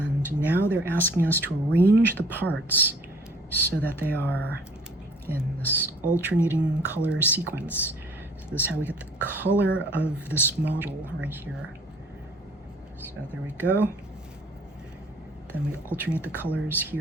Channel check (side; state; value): both; normal; correlation 0.54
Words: now they're asking us to arrange the parts so that they are in this alternating color sequence. So this is how we get the color of this model right here. So there we go. Then we alternate the colors